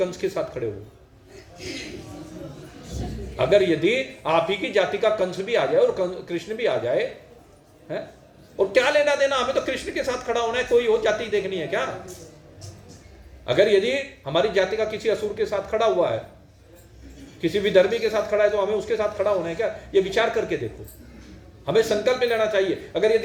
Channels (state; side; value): identical; both; correlation 1.00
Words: के साथ खड़े होगे? अगर यदि आप ही की जाति का कंस भी आ जाए और कृष्ण भी आ जाए है, और क्या लेना देना, हमें तो कृष्ण के साथ खड़ा होना है, कोई और जाति देखनी है क्या? अगर यदि हमारी जाति का किसी असुर के साथ खड़ा हुआ है, किसी विधर्मी के साथ खड़ा है, तो हमें उसके साथ खड़ा होना है क्या? ये विचार करके देखो। हमें संकल्प लेना चाहिए, अगर